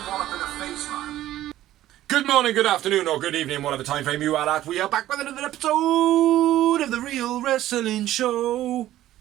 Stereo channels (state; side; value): quieter; left; 13.9 dB